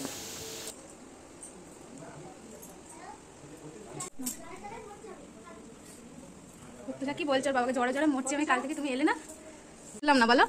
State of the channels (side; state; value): both; identical; correlation 1.00